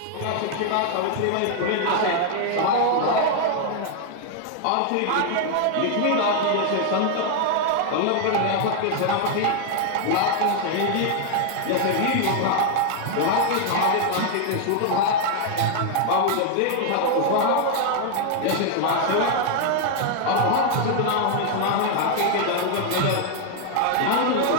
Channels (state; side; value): different; both; correlation 0.00